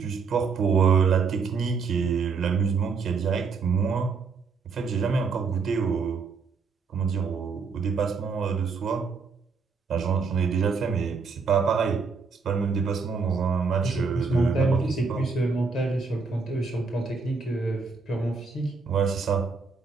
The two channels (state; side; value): quieter; left; 4.9 dB